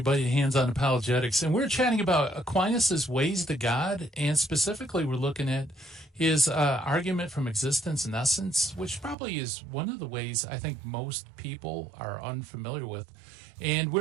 to Hands-On Apologetics. And we're chatting about Aquinas' ways to God, and specifically we're looking at his argument from existence and essence, which probably is one of the ways I think most people are unfamiliar with. And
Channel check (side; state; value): left; drops out; at 9.2 s